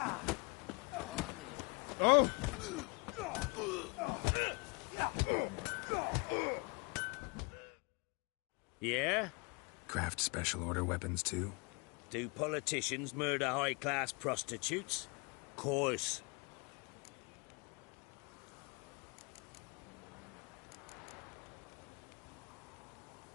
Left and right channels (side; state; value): right; quieter; 30.8 dB